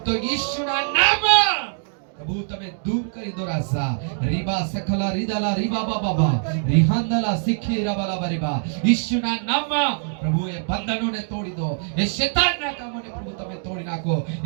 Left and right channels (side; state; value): left; silent; digital silence